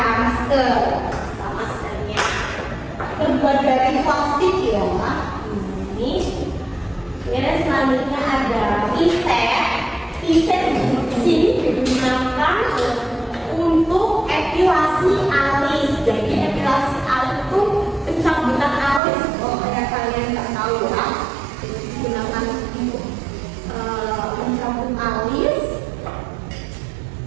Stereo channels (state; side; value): drops out; left; at 19.0 s